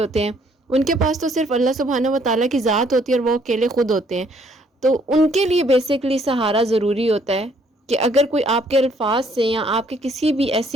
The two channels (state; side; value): normal; both; correlation 0.65